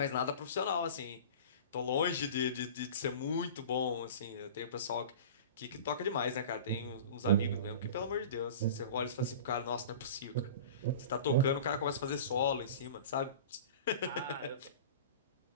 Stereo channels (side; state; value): both; inverted; correlation -0.37